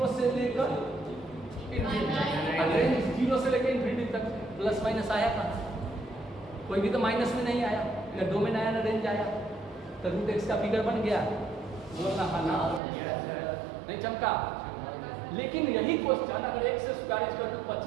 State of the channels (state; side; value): drops out; left; at 12.8 s